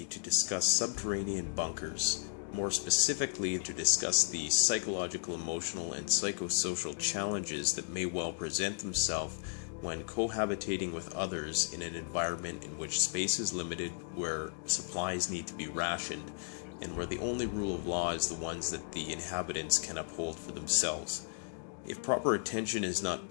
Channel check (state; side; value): silent; right; digital silence